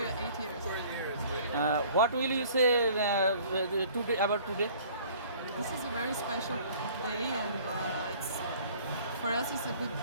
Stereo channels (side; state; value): both; inverted; correlation -0.52